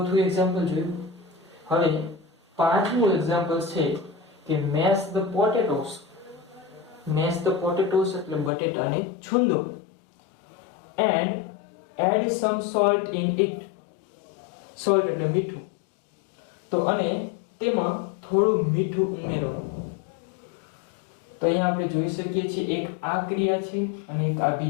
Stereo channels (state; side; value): drops out; right; at 8.5 s